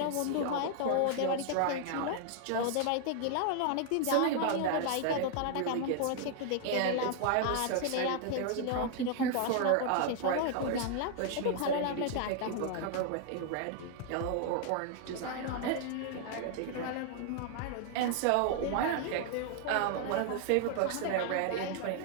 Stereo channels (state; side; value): different; both; correlation 0.00